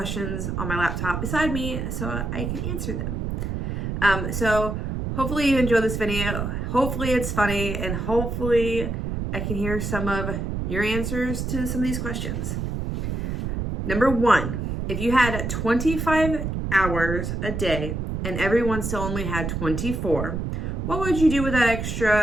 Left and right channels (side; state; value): right; noise; rumble, 3 dB below the sound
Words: on my laptop beside me so I can answer them. So hopefully you enjoy this video. Hopefully it's funny, and hopefully I can hear some of your answers to some of these questions. Number one, if you had 25 hours a day and everyone still only had 24, what would you do with that